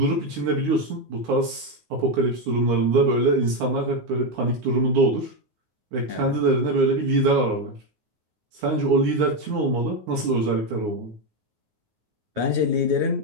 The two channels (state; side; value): late; left; 9.5 ms